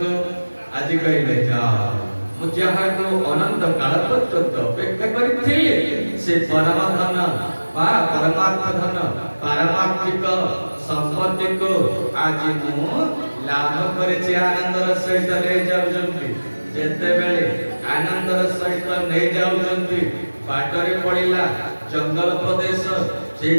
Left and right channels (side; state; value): both; inverted; correlation -1.00